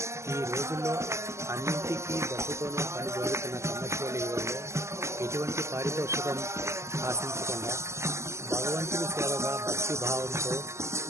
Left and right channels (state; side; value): late; left; 0.13 ms